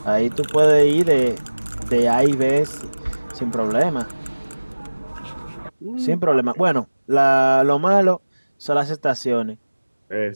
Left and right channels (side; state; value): both; inverted; correlation -1.00